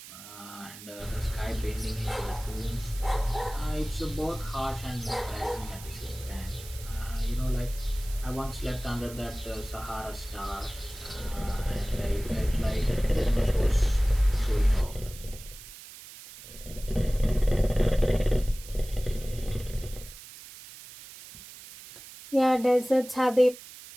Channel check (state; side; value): noise; right; hiss, 16 dB below the sound